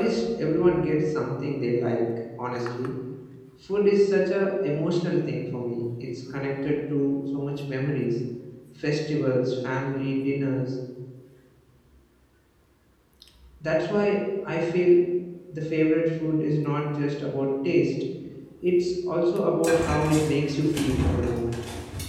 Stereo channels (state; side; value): identical; both; correlation 1.00